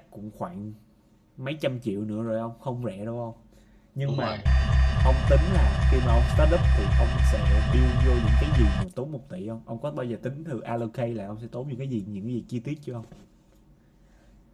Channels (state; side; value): identical; both; correlation 1.00